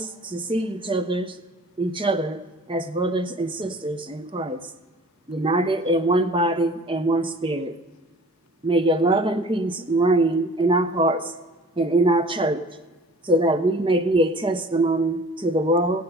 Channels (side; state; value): both; normal; correlation 0.46